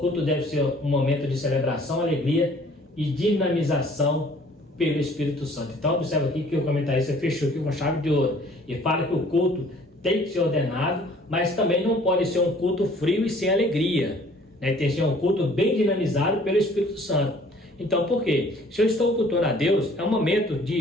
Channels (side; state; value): both; normal; correlation 0.55